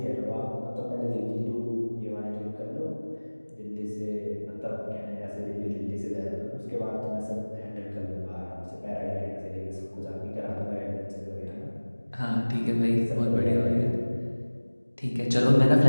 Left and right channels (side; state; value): both; inverted; correlation -1.00